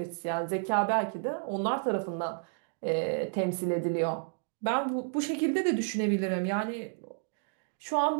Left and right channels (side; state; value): left; silent; digital silence